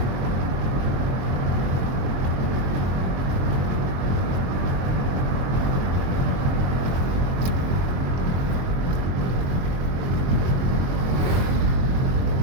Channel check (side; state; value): left; late; 23 ms